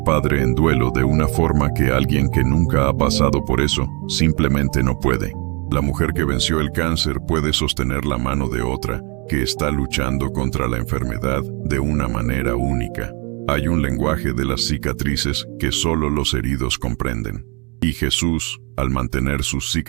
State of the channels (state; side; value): quieter; left; 31.8 dB